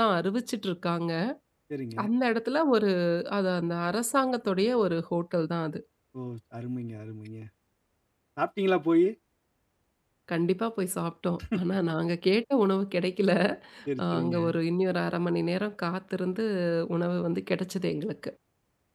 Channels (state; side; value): identical; both; correlation 1.00